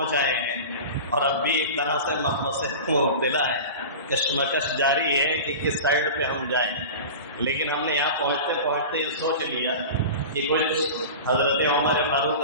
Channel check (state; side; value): inverted; both; correlation -0.32